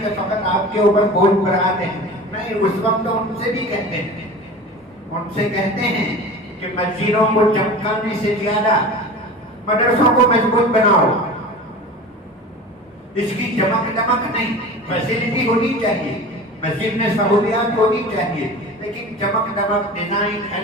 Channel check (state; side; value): normal; both; correlation 0.35